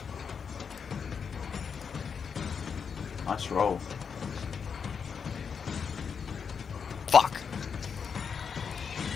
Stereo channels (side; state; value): right; quieter; 6.4 dB